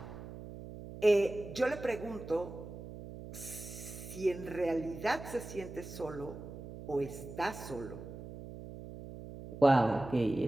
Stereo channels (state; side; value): noise; right; hum, 12 dB below the sound